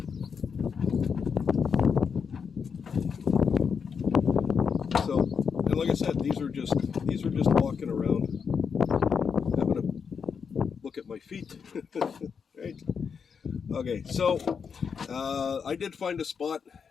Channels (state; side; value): quieter; right; 6.3 dB